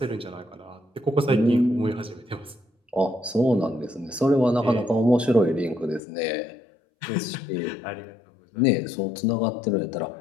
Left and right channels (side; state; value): right; drops out; at 6.0 s